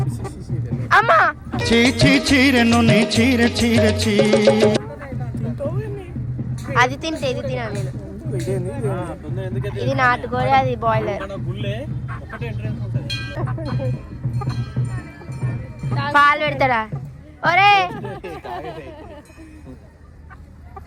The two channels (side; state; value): both; identical; correlation 1.00